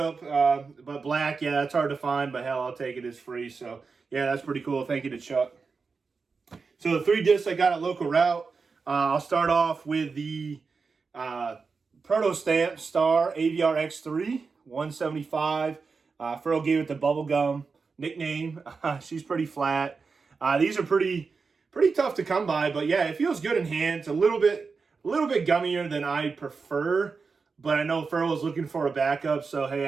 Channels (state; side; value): quieter; left; 4.8 dB